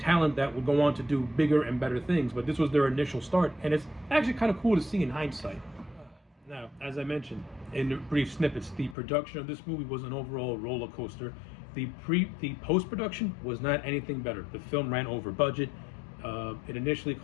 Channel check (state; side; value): drops out; right; at 9.0 s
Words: that would go on to do bigger and better things, but this was their initial start, and it's actually kind of cool to see in hindsight. Now, as I mentioned in the brief snippets, the production of this movie was an overall roller coaster. The post-production was not anything better. The film ran over budget. It initially